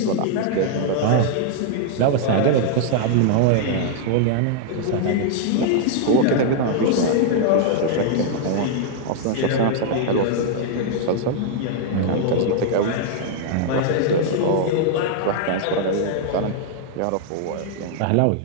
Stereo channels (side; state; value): both; different; correlation -0.01